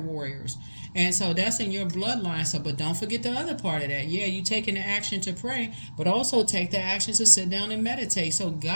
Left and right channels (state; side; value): inverted; both; correlation -1.00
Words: And so that's in your bloodline. So, but don't forget the other part of that. Yeah, you taking the action to pray, but also take the action to sit down and meditate. So